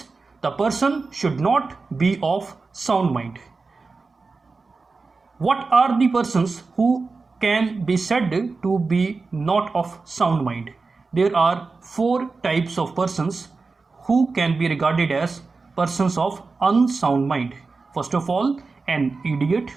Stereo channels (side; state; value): left; quieter; 4.1 dB